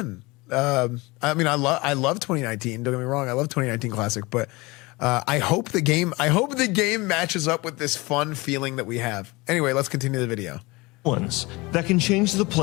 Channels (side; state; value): right; quieter; 23.6 dB